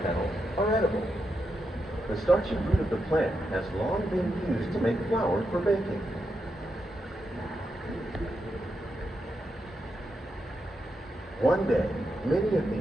petals, are edible. The starchy root of the plant has long been used to make flour for baking. One day, many of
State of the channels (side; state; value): both; normal; correlation 0.84